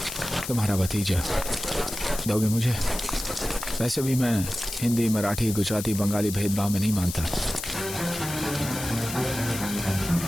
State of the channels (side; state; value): left; noise; hiss, 8 dB below the sound